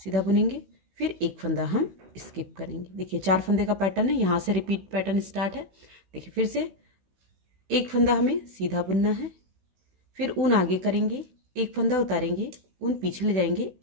बुनेंगे, फिर एक फंदा हम स्किप करेंगे। देखिए 4 फंदे का पैटर्न है, यहाँ से रिपीट पैटर्न स्टार्ट है। देखिए फिर से एक फंदा हमें सीधा बुनना है, फिर ऊन आगे करेंगे, एक फंदा उतारेंगे, ऊन पीछे ले जाएंगे,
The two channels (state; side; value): late; left; 16 ms